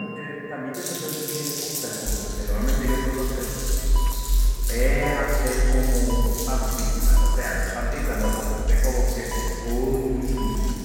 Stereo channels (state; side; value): identical; both; correlation 1.00